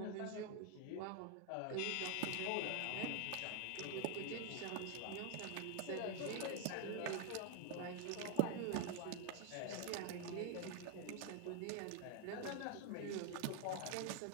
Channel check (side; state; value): both; different; correlation 0.00